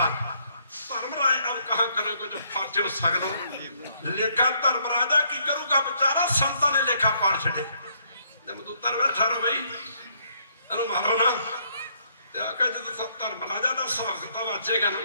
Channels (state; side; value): inverted; both; correlation -0.70